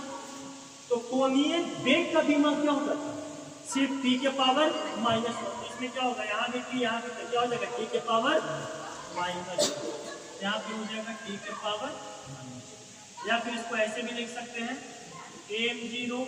तो कोणीय वेग का बीमा क्या होगा? सिर्फ t के पावर -1। इसमें क्या होगा? यहाँ भी t, यहाँ भी क्या हो जाएगा? t के पावर -2। यहाँ पे हो जाएगा t के पावर -2। या फिर इसको ऐसे भी लिख सकते हैं m0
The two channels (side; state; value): both; identical; correlation 1.00